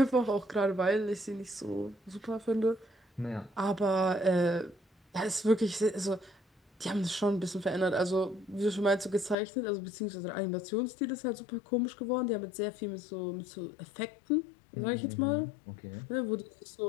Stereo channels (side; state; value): right; drops out; at 9.3 s